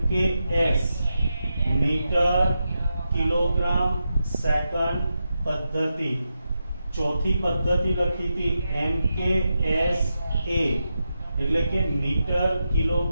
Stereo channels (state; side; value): inverted; both; correlation -0.88